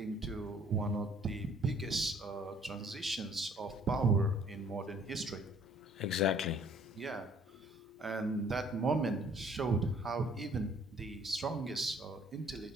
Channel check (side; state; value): both; normal; correlation 0.59